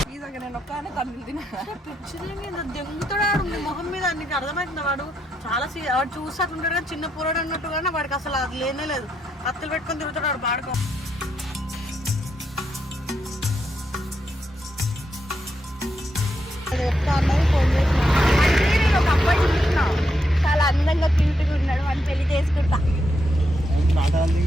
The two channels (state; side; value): normal; both; correlation 0.81